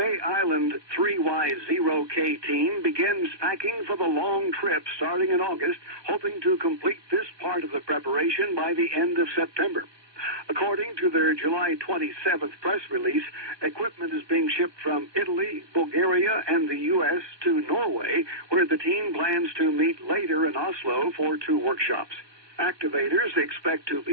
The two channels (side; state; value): left; late; 1.2 ms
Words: Island 3Y0K team begins packing for the long trip starting in August, hoping to complete this part of the preparation by the end of September. According to their July 27th press release, equipment is being shipped from Italy, Bulgaria, and the U.S. to Norway, where the team plans to meet later in Oslo for 2 workshops. Activators expect to